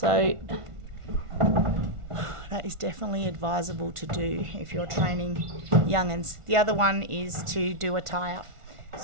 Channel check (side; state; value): left; late; 1.5 ms